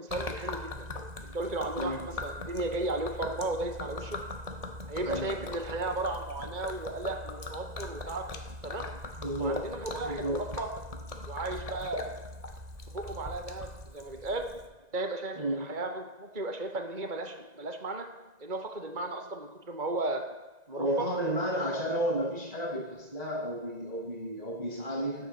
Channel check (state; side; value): late; left; 2.0 ms